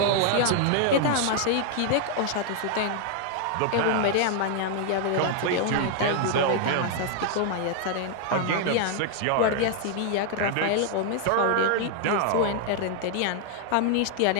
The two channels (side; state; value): both; different; correlation 0.00